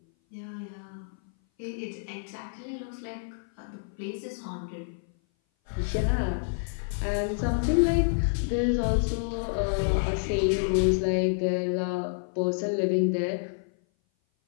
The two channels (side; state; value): right; silent; 57 dB below the other